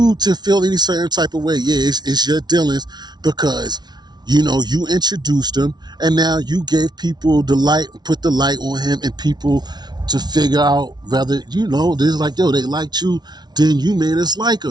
to feel any certain type of way, yeah, it's your dealings because you introduced him and now you gave people the light, put the light on him and people to figure out whether, there's like, yo, they liked you, then you made us like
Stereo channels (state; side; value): late; left; 0.20 ms